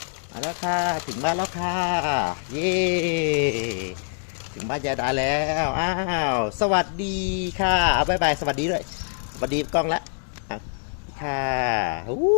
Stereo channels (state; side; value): silent; right; digital silence